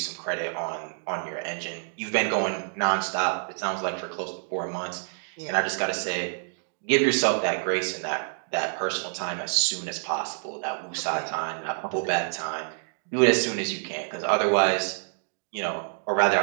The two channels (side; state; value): left; silent; digital silence